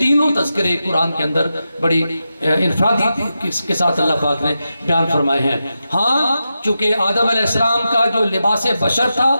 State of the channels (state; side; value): inverted; both; correlation -0.90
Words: تذکرے قرآن کے اندر بڑی انفرادی کے ساتھ اللہ پاک نے بیان فرمائے ہیں۔ ہاں چونکہ آدم علیہ السلام کا جو لباس بشر تھا